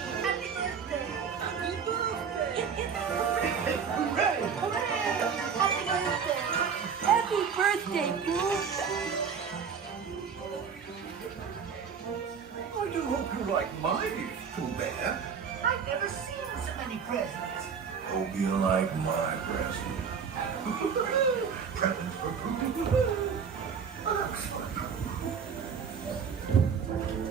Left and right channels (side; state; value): left; quieter; 6.5 dB